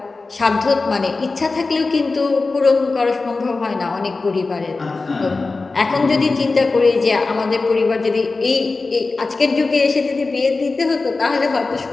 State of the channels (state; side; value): quieter; right; 3.8 dB